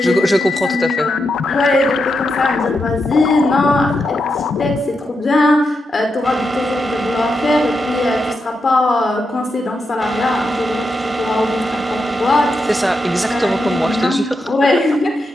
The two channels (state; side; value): normal; both; correlation 0.85